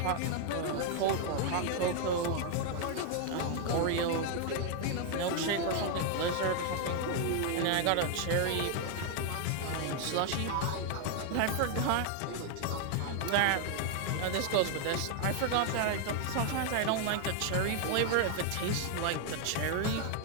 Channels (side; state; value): both; different; correlation 0.00